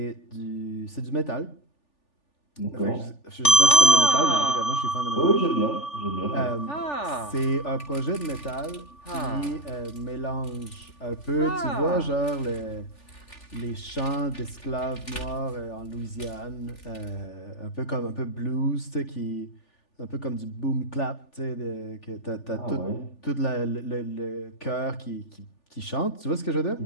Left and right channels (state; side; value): late; right; 3.4 ms